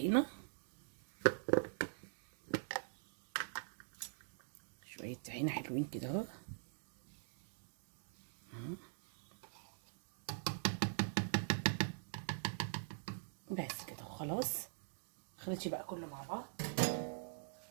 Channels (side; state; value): left; silent; digital silence